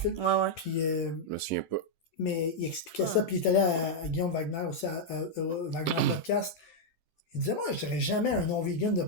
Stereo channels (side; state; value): right; late; 12 ms